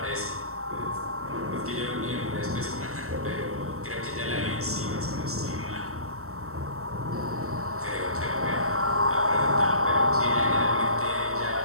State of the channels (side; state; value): left; late; 0.63 ms